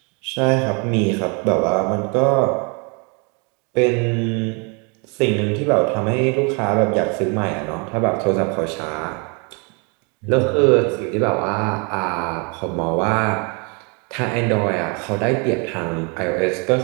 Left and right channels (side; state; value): left; quieter; 33.4 dB